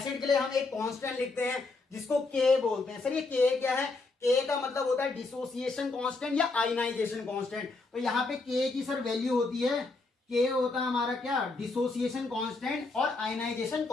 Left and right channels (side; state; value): right; quieter; 3.6 dB